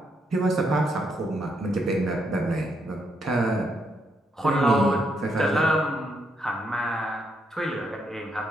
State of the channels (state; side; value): normal; both; correlation 0.77